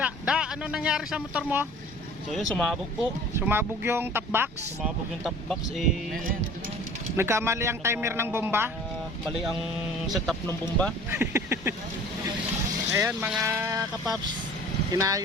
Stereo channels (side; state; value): both; normal; correlation 0.46